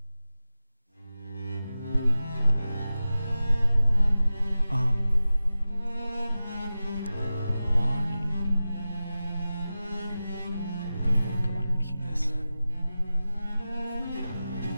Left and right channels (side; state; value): both; inverted; correlation -0.95